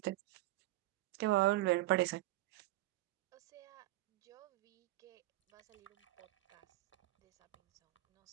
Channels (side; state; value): left; quieter; 17.0 dB